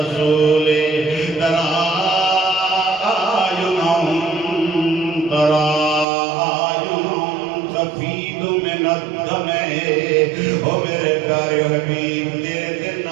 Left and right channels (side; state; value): left; drops out; at 6.1 s